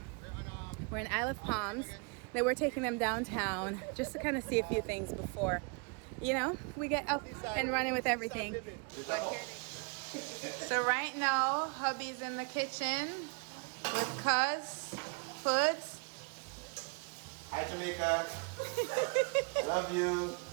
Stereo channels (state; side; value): quieter; left; 34.9 dB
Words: We're in Isle of Palms. Then we're taking them downtown just to kind of see a few things before, you know, we get up and running with everything. But here so right now, hubby's in the kitchen with Cuz Foods. Hi Jamaica. I love you.